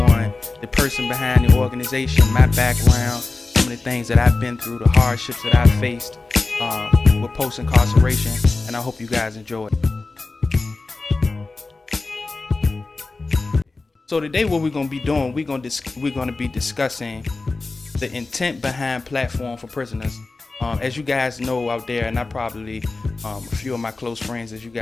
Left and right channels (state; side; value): quieter; right; 3.6 dB